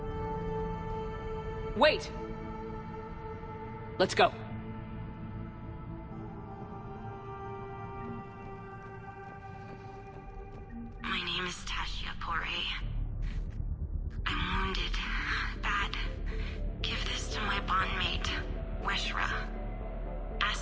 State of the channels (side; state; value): both; identical; correlation 1.00